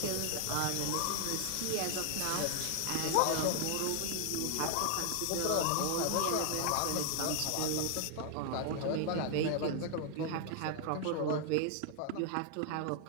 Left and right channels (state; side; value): different; both; correlation 0.00